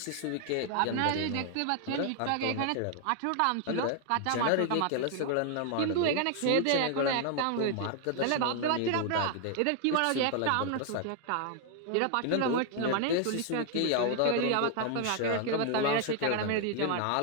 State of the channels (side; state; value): both; different; correlation 0.00